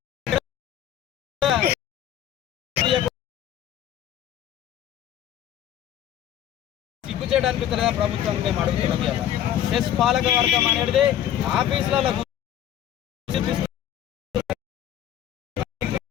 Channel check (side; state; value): right; quieter; 10.9 dB